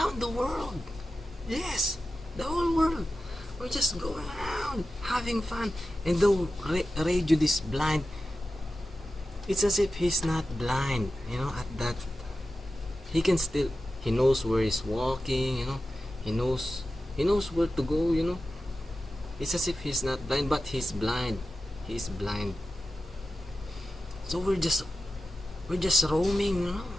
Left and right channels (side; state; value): both; normal; correlation 0.93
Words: the world. Yes, the whole world. We're just going around having fun. And though Ray Jude is blind, it's as if he's not blind. At that, he knows where he's walking. He knows where to go. It's as if he's not blind, but he's blind. He's blind. So we're just roaming,